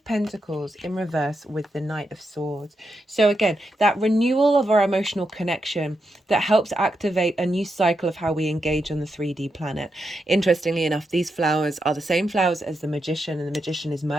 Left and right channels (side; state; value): both; normal; correlation 0.85